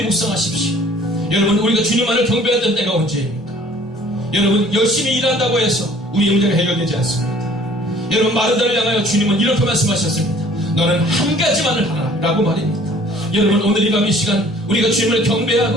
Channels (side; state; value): both; normal; correlation 0.53